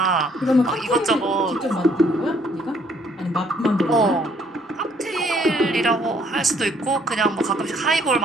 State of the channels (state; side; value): normal; both; correlation 0.65